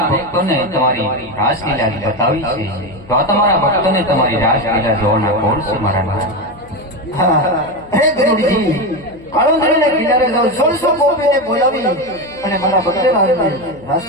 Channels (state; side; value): noise; left; hum, 22 dB below the sound